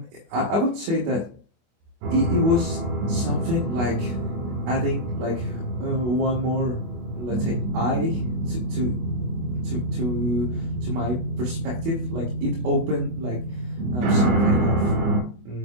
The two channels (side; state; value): left; late; 24 ms